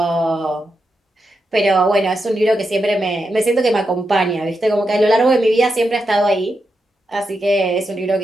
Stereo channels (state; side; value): normal; both; correlation 0.86